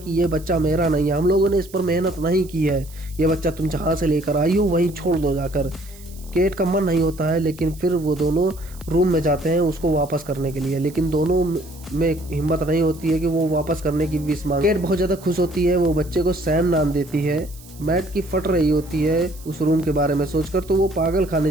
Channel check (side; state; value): right; noise; hiss, 21 dB below the sound